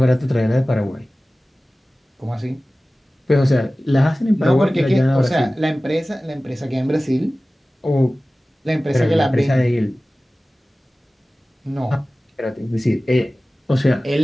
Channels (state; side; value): normal; both; correlation 0.97